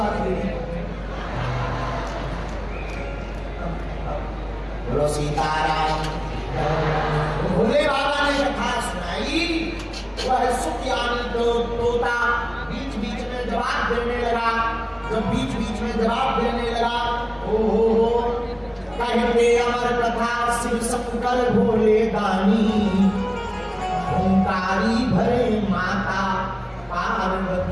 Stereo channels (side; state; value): both; identical; correlation 1.00